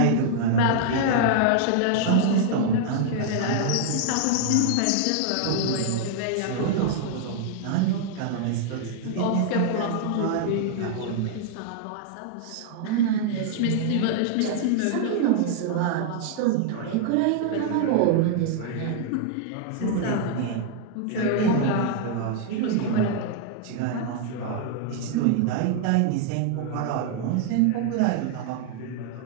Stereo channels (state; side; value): different; both; correlation -0.01